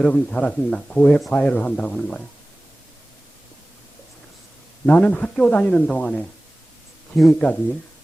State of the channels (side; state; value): both; normal; correlation 0.98